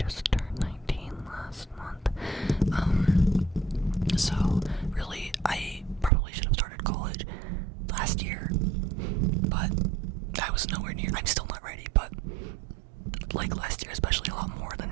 19 last month. So really, I probably should have started college last year, but I was nowhere near. I'm still not ready, but like last year, especially a lot more than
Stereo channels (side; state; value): left; drops out; at 6.1 s